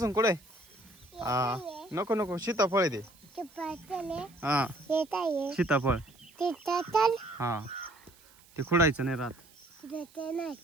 कुठे? हा नको नको सीताफळ आहे ते. हा सीताफळ हा ते खुडायचं नाही राहत.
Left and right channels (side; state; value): right; noise; hiss, 27 dB below the sound